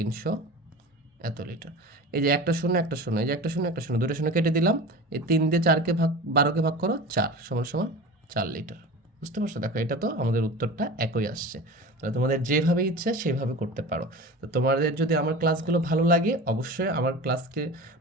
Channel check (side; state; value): both; normal; correlation 0.33